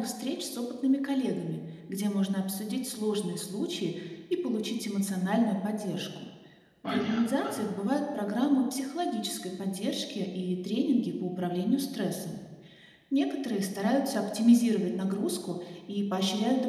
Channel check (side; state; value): both; identical; correlation 1.00